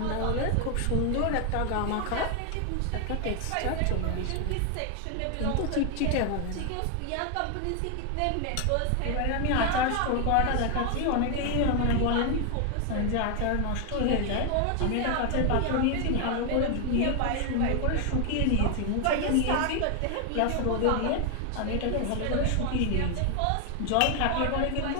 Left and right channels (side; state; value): both; different; correlation 0.00